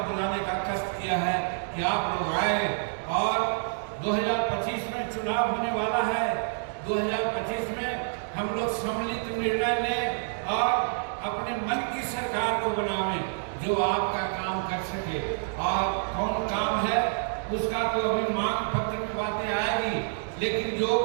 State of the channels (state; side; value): silent; left; digital silence